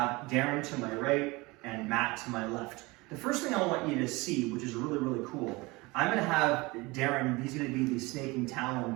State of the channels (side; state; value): left; quieter; 23.6 dB